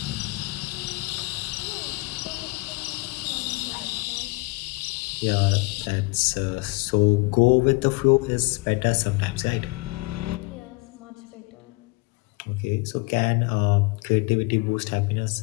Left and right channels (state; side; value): quieter; right; 26.2 dB